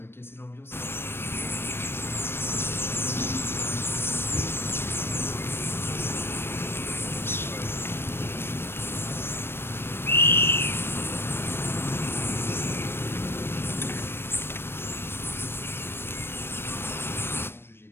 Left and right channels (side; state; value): right; late; 0.11 ms